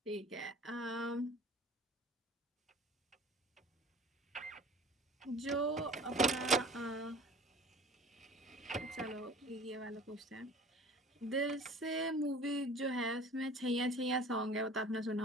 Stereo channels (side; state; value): both; normal; correlation 0.44